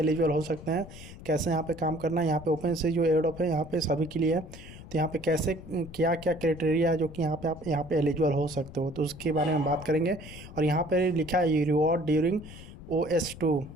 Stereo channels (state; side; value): noise; left; rumble, 15 dB below the sound